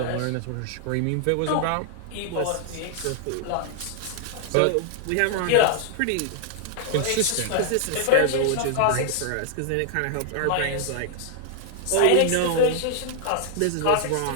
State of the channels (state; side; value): different; both; correlation 0.00